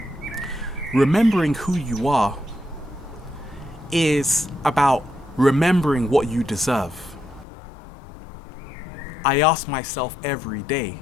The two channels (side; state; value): right; drops out; at 7.5 s